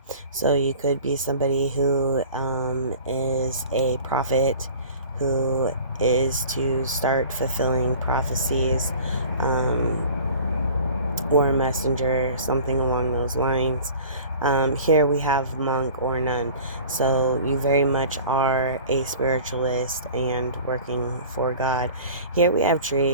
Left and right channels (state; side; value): inverted; both; correlation -0.43